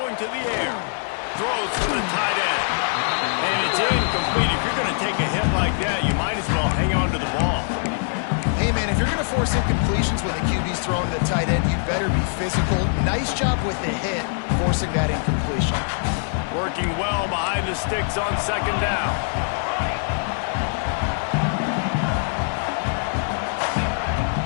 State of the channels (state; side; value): silent; right; digital silence